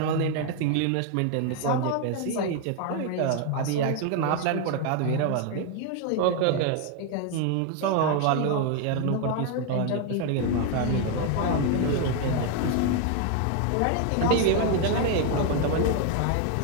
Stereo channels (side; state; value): both; different; correlation 0.01